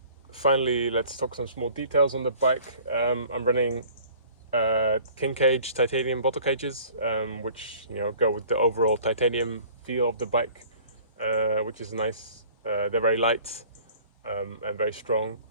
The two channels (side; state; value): both; inverted; correlation -0.50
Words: Finally, let's talk some small details on the bike. I'm running King Cage titanium bottle cages, which go with the overall titanium feel of the bike, which is nice. They're very light and very strong.